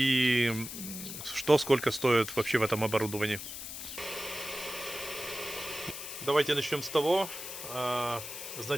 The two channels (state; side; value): noise; left; hiss, 8 dB below the sound